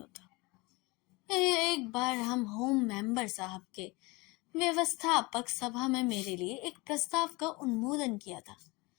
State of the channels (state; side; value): quieter; right; 24.7 dB